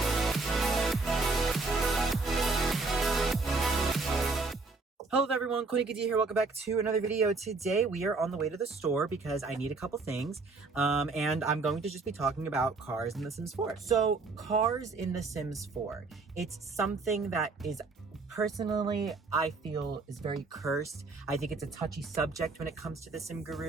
Hello everyone, Coolnickyd here. Welcome back to another video. Today we are on the way to the store because I need a couple things, and I'm going to just be talking about cars in The Sims 4. So, cars in The Sims 4, it's something that is personally, I feel is very cursed. I think it's a touchy subject when it comes to the Sim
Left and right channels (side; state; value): left; quieter; 3.9 dB